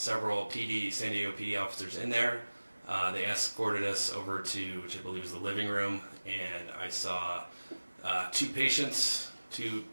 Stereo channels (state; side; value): inverted; both; correlation -1.00